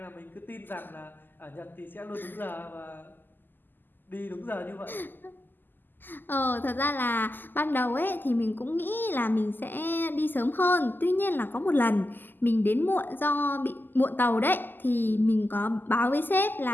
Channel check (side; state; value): right; late; 0.091 ms